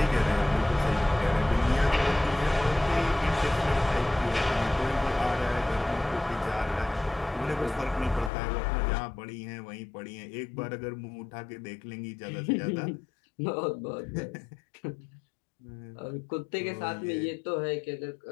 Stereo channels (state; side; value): drops out; right; at 8.3 s